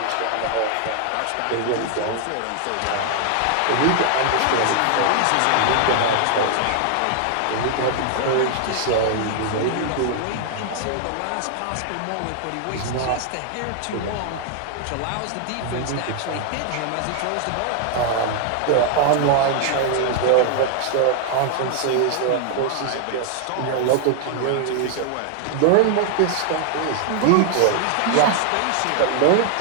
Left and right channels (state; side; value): different; both; correlation 0.00